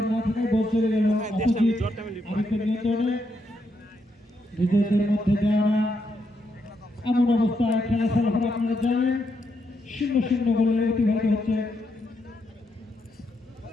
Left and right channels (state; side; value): normal; both; correlation 0.80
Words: না থাকায় বল চলে গেল অপোজিট আরিফের নিয়ন্ত্রণে নিজেদের মধ্যে দেওয়া এমন অবস্থায় খেলা ফলাফল আপনারা জানেন 0-0 বলে অতিবাহিত হচ্ছে